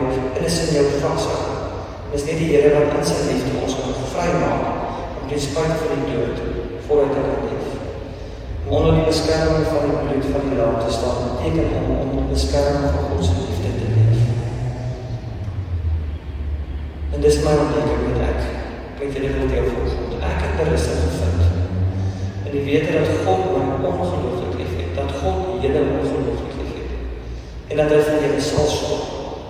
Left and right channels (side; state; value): both; identical; correlation 1.00